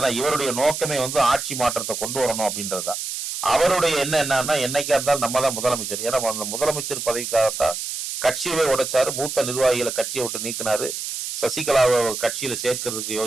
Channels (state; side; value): noise; right; hiss, 5 dB below the sound